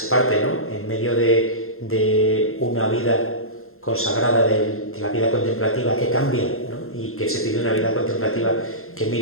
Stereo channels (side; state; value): right; late; 0.62 ms